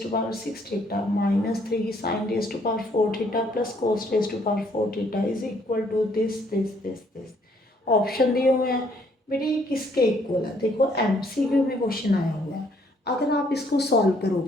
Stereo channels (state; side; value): normal; both; correlation 0.66